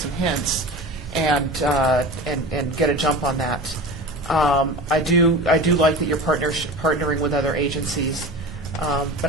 hints and get a jump on that. I do like that you're partnering with other agencies.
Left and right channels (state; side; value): normal; both; correlation 0.32